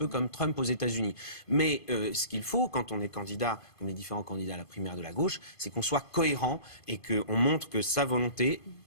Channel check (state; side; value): late; right; 2.5 ms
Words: comme Trump aux États-Unis. Mais ce qu'il faut, quand on est candidat, comme les différents candidats à la primaire de la gauche, c'est qu'on soit cohérent et qu'on montre que sa volonté,